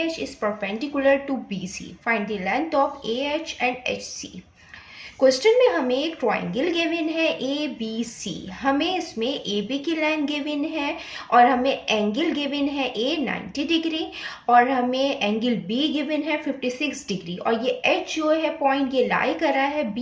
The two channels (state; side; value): identical; both; correlation 1.00